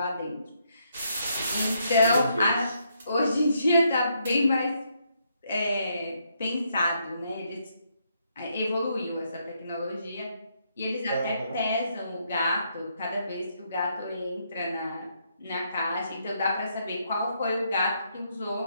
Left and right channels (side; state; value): both; inverted; correlation -0.75